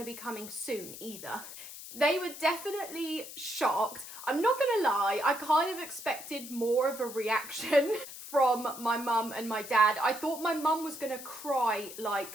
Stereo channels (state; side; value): noise; left; hiss, 12 dB below the sound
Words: to be coming soon either. They were definitely shocked. I'm not gonna lie, I kind of expected more of a reaction from my mum and my dad. I thought my mum was gonna cry